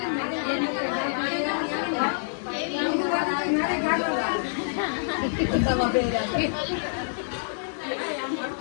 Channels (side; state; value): right; silent; 60 dB below the other